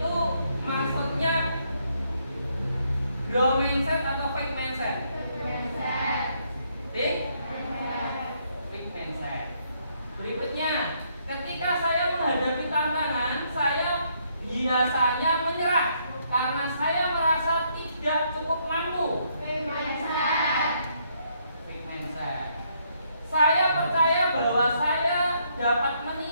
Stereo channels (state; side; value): inverted; both; correlation -0.72